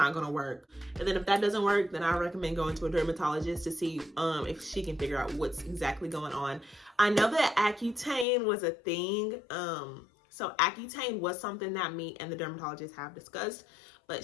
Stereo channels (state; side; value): drops out; right; at 8.2 s